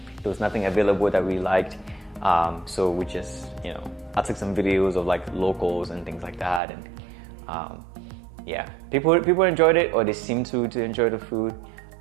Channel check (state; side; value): drops out; left; at 6.6 s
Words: there was nothing available that we liked. So we just, I took some videos of like locals and things like that, and yeah, people enjoyed it, or they seemed to enjoy the food.